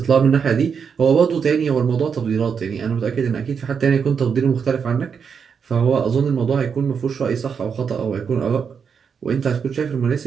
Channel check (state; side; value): quieter; left; 6.5 dB